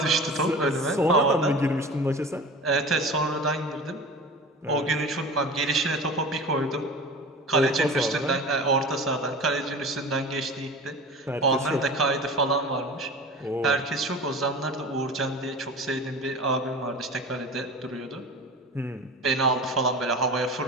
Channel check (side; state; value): both; normal; correlation 0.35